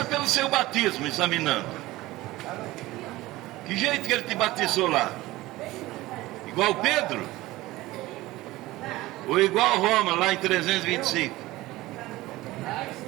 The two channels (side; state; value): left; quieter; 18.3 dB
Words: pelo seu batismo, examinando. Que jeito que ele te batizou lá? Igual Pedro? Ou igual Roma, lá em 325.